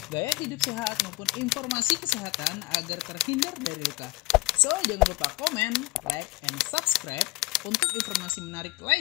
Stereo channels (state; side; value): quieter; right; 20.3 dB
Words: gaya hidup sehat maupun informasi kesehatan agar terhindar dari luka. So, jangan lupa komen, like, and subscribe untuk informasi menarik